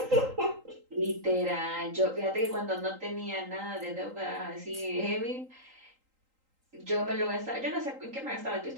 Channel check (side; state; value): left; late; 3.8 ms